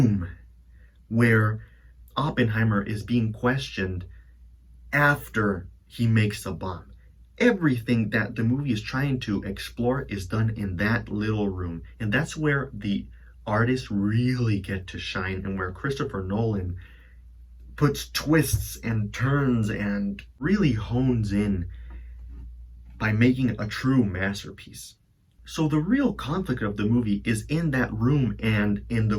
where Oppenheimer is being questioned after he makes the bomb. Everything that the movie is trying to explore is done in that little room, and that's where the artists really get to shine, and where Christopher Nolan puts twists and turns and really hones in by making a true masterpiece. So the real conflict of the movie is in that room and in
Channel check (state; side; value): identical; both; correlation 1.00